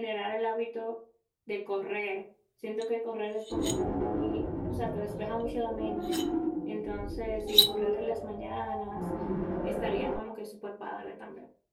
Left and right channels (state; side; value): identical; both; correlation 1.00